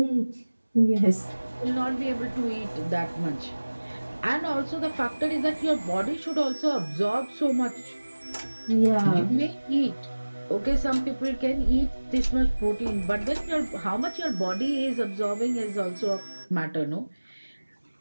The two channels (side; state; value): both; inverted; correlation -1.00